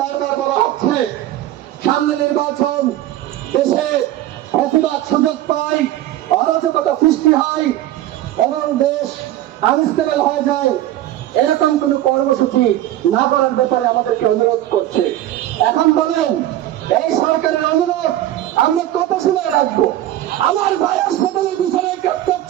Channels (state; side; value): quieter; left; 13.7 dB